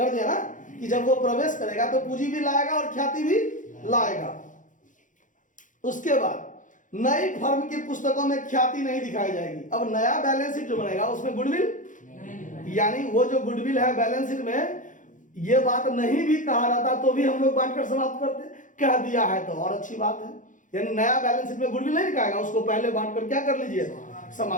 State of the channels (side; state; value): right; late; 0.37 ms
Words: दिया ना कि जब वो प्रवेश करेगा तो पूंजी भी लाएगा और ख्याति भी लाएगा। उसके बाद नई फर्म की पुस्तकों में ख्याति नहीं दिखाई जाएगी। अब नया बैलेंस शीट जो बनेगा उसमें गुडविल, यानी वो जो गुडविल है बैलेंस शीट में, ये बात नहीं भी कहा रहता तो भी हम लोग बांटकर समाप्त करते, कह दिया है तो और अच्छी बात है। यानी नया बैलेंस शीट में गुडविल नहीं दिखाएगा, उसको पहले बांटकर क्या कर लीजिए,